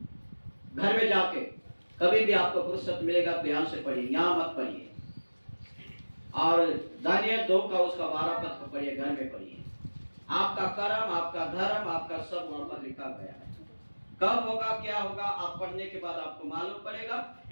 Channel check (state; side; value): inverted; both; correlation -1.00